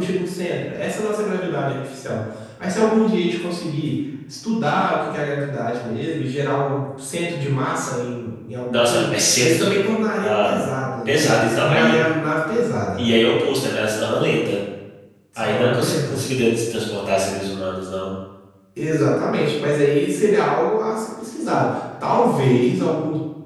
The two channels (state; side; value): identical; both; correlation 1.00